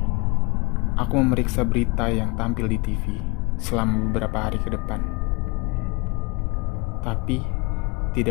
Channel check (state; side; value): quieter; right; 26.6 dB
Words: Aku memeriksa berita yang tampil di TV selama beberapa hari ke depan. Tapi,